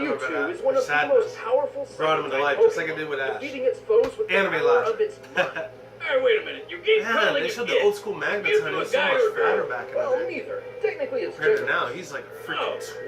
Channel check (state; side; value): identical; both; correlation 1.00